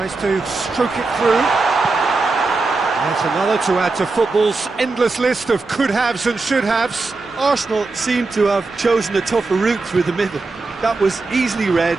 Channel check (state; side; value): quieter; left; 3.7 dB